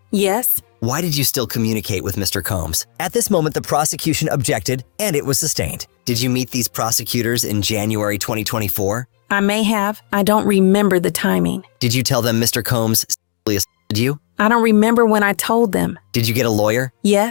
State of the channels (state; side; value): silent; right; digital silence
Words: Yes. Why did you still communicate with Mr. Combs? At this moment, the prosecution objected, and it was sustained. Did you meet these prosecutors in January 2024? I may have. I don't remember the timing. Did you tell them Mr. Combs sexually assaulted you? I don't remember when I told them. Did you get a lawyer?